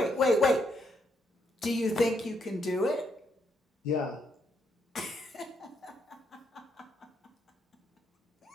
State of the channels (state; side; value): normal; both; correlation 0.76